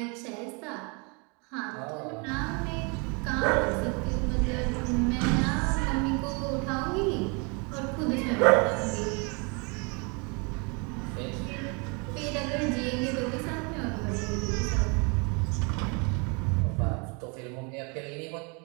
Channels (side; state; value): left; quieter; 32.2 dB